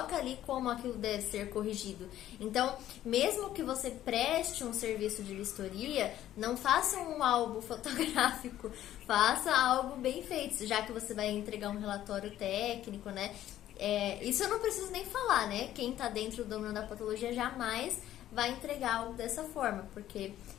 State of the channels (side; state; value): right; quieter; 12.6 dB